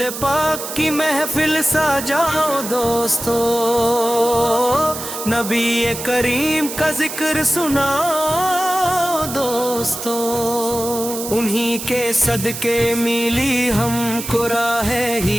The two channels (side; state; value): right; noise; hiss, 8 dB below the sound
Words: پاک کی محفل سجاؤ دوستو، نبی کریم کا ذکر سناؤ دوستو، انہی کے صدقے ملی ہم کو راہ